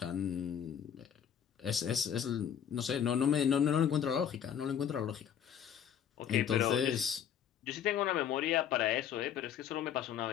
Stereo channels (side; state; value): right; quieter; 8.9 dB